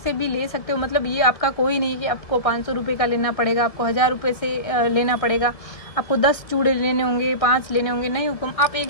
भी ले सकते हो, मतलब ये आपका कोई नहीं है कि आपको 500 रुपये का लेना पड़ेगा, आपको 1000 रुपये से लेना पड़ेगा, आपको 10 चूड़े लेने होंगे, 5 लेने होंगे, नहीं हुकुम, आप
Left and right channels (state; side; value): late; right; 1.9 ms